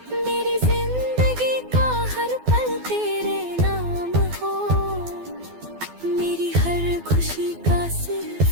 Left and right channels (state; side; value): late; left; 12 ms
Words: मेरी जिंदगी का हर पल तेरे नाम हो, मेरी हर खुशी का